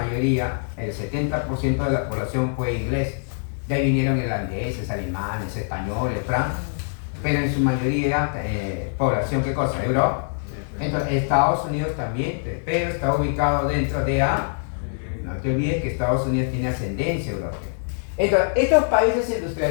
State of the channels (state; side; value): silent; right; digital silence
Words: el 70% de la población fue inglés. De ahí vinieron irlandeses, alemanes, españoles, francos, pero en su mayoría población, ¿qué cosa? Europa. Entonces, Estados Unidos también, pero está ubicado dentro de A. No te olvides que Estados Unidos tiene ascendencia europea. Entonces, estos países